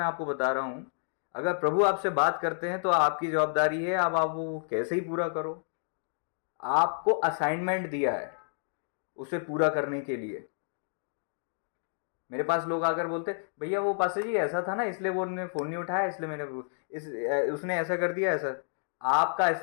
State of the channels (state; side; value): silent; right; digital silence